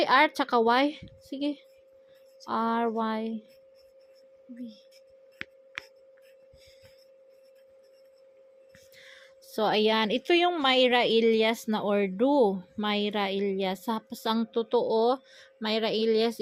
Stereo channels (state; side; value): identical; both; correlation 1.00